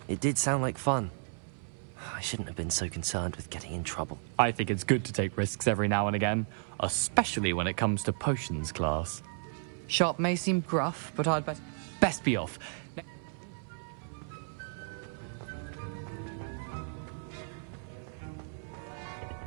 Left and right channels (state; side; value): silent; left; 56 dB below the other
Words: It did sound like fun. I shouldn't have been so concerned with getting in trouble. I think it's good to take risks every now and again, especially when it comes to potions class. Sharp may seem gruff, but I'd best be off.